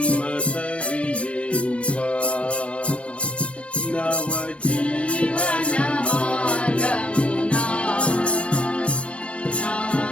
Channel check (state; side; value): late; right; 0.060 ms